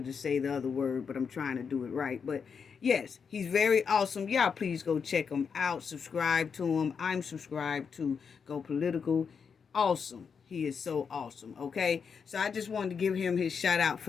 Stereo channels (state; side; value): quieter; right; 6.2 dB